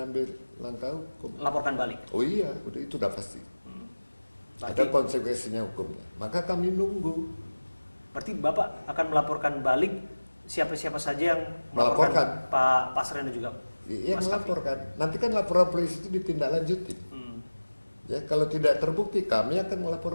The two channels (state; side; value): inverted; both; correlation -1.00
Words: langkah hukum. Laporkan balik. Oh iya, itu udah pasti. Berarti, Ada konsekuensinya hukumnya. Maka kami nunggu. berarti Bapak akan melaporkan balik siapa-siapa saja yang Melaporkan. Pak Pasren dan juga Iya Mas Kavi. melaporkan. Nanti kan laporan polisi itu ditindaklanjuti. Ya kalau tidak terbukti kami akan